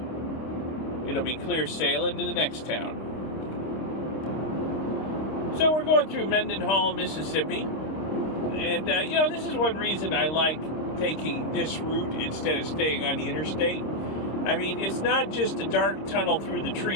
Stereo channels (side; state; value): right; late; 26 ms